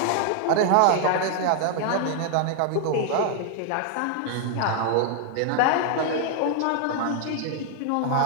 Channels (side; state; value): both; different; correlation 0.00